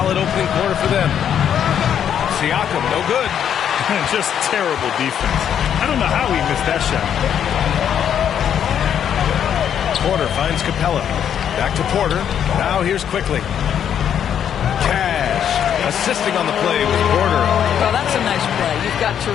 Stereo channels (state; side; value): quieter; right; 9.0 dB